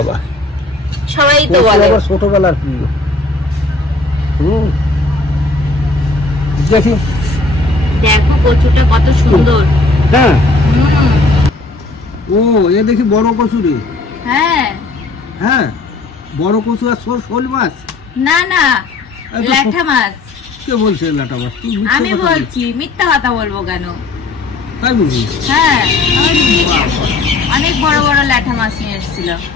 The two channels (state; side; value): quieter; right; 3.2 dB